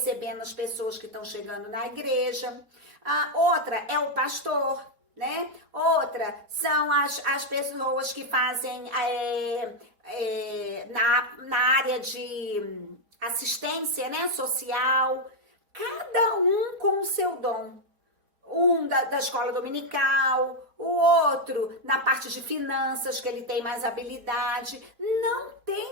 as pessoas que estão chegando na igreja. Outra é o pastor, né? Outra são as pessoas que fazem na área de assistência, né, social. Cada um com o seu dom. Um da escola dominical, o outro na parte de finanças, que ele tem mais habilidade. Não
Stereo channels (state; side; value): late; left; 4.3 ms